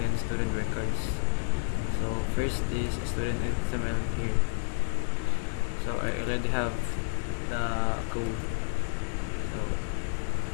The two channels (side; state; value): right; silent; digital silence